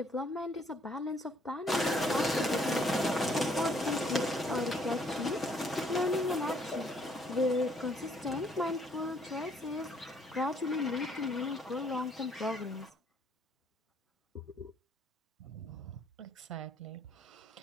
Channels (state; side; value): normal; both; correlation 0.65